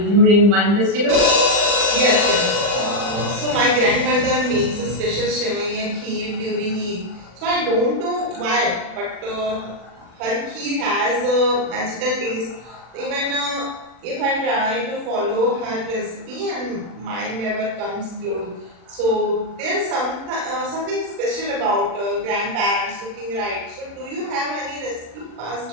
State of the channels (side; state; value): left; late; 40 ms